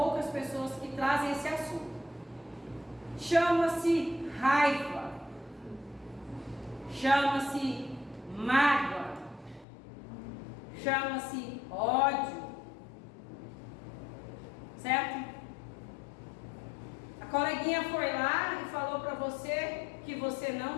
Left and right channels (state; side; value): drops out; right; at 9.7 s